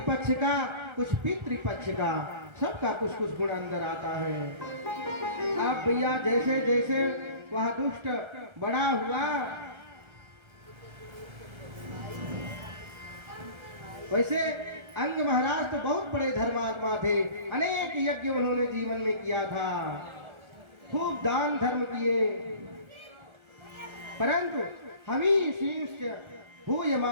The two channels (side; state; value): left; late; 1.4 ms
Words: का कुछ पितृपक्ष का, सबका कुछ कुछ गुण अंदर आता है। अब भैया जैसे जैसे वह दुष्ट बड़ा हुआ, वैसे अंग महाराज तो बहुत बड़े धर्मात्मा थे, अनेक यज्ञ उन्होंने जीवन में किया था, खूब दान धर्म किए, परंतु हमीशींश्च